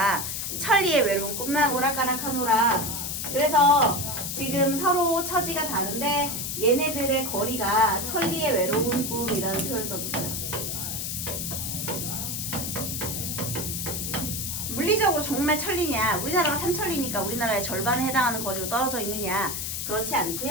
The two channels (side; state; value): left; noise; hiss, 3 dB below the sound